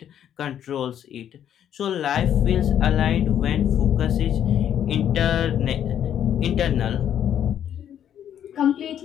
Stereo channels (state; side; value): quieter; right; 9.9 dB